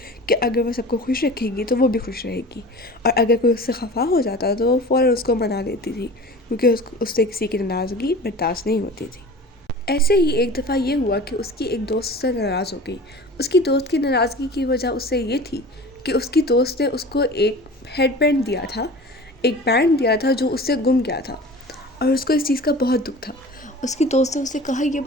कि अगर वो सबको खुश रखेगी तो वो भी खुश रहेगी। और अगर कोई उससे खफा हो जाता तो वो फ़ौरन उसको मना लेती थी, क्योंकि उससे किसी की नाराज़गी बर्दाश्त नहीं होती थी। ऐसे ही एक दफ़ा ये हुआ कि उसकी एक दोस्त उससे नाराज़ हो गई। उसकी दोस्त की नाराज़गी की वजह उससे ये थी कि उसकी दोस्त ने उसको एक हेडबैंड दिया था, एक बैंड दिया था जो उससे गुम गया था। और उसको इस चीज़ का बहुत दुख था। उसकी दोस्त ने उससे कहा, ये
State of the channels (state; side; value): normal; both; correlation 0.38